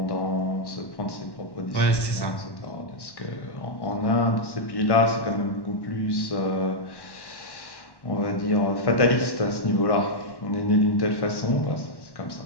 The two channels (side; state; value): right; late; 1.1 ms